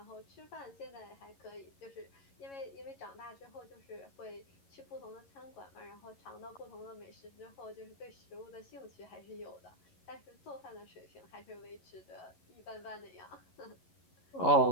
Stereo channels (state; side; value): late; right; 11 ms